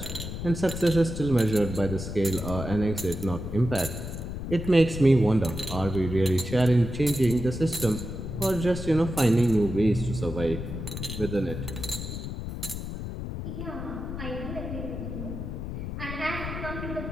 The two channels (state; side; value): noise; left; rumble, 6 dB below the sound